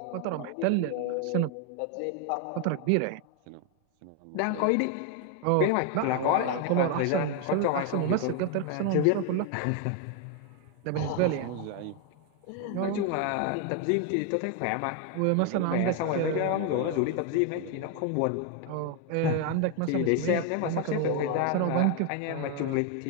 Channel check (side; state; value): both; different; correlation 0.01